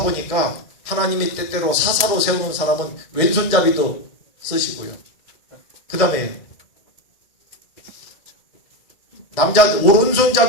보니까 하나님이 때때로 사사로 세우는 사람은 왼손잡이도 쓰시고요. 그 다음에 남자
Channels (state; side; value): late; right; 2.1 ms